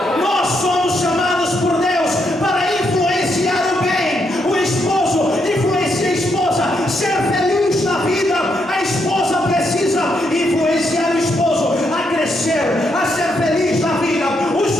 Nós somos chamados por Deus para influenciar o bem. O esposo influencia a esposa, ser feliz na vida. A esposa precisa influenciar o esposo a crescer, a ser feliz na vida. Os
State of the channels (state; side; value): normal; both; correlation 0.78